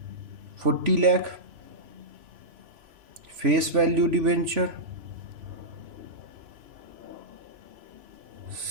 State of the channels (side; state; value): left; late; 3.0 ms